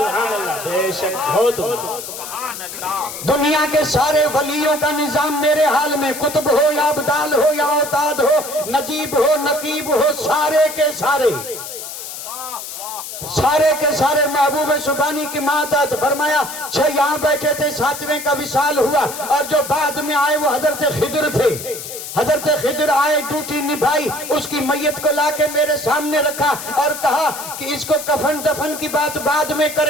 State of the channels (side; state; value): left; noise; hiss, 9 dB below the sound